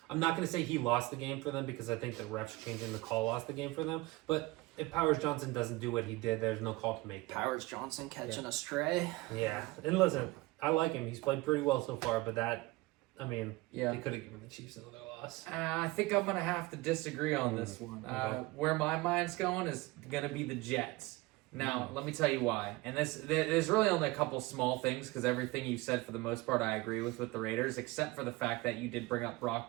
I'm not going to say he lost the game for them because I think the refs changing the call lost the game for them, but if Powers Johnson doesn't do what he did, there's no call to make. Powers Johnson catching a stray. Yeah, and listen, I like him. He's played pretty well so far, but they could have given the Chiefs another loss. I think I'm going to have to disagree on this one. Where my mind's going is going to be the Jets. Now, let me tell you why. And there's really only a couple small things, because everything you said for the most part I agree with the Raiders, except for the fact that you did bring up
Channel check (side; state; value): left; quieter; 21.3 dB